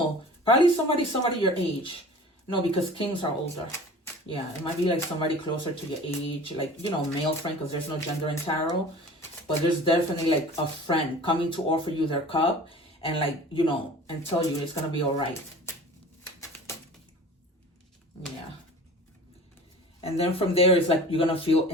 Probably somebody your age. No, because kings are older. Yeah, it might be like somebody closer to your age, like, you know, male friend, because there's no gender in tarot. But there's definitely like a friend coming to offer you their cup and like, you know, and tell you it's going to be all right. Yeah. And then from there, it's like you're going to feel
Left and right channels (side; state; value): both; normal; correlation 0.41